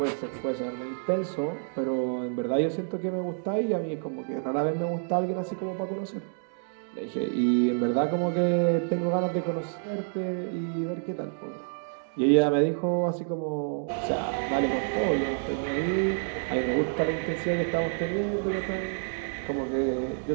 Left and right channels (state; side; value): silent; left; digital silence